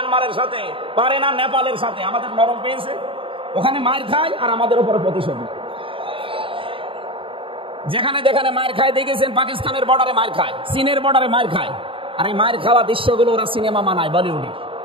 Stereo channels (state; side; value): late; left; 0.26 ms